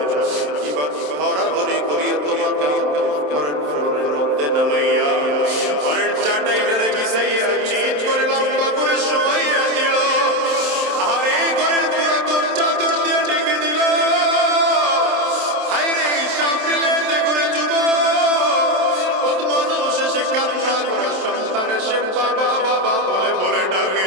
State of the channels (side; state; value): left; late; 27 ms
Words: এবার ধরাধরি করিয়ে তোমাকে ঘরের ফ্লোরের মধ্যে নামাইয়া, ঘরের চাটাইটারে বিছাইয়া চিৎ করে লম্বা করে শোয়াইয়া দিল। আর এই ঘরের পুরাতন চাদর দিয়ে ডেকে দিল। হায় রে, হিসাব মিলে করে যুবক কত মানুষ এসে কান্না করে, সন্তান এসে বাবা বাবা বলে বলে